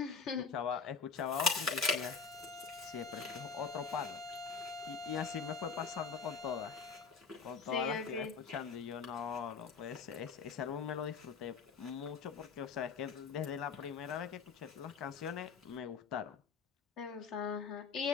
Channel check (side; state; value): right; quieter; 5.4 dB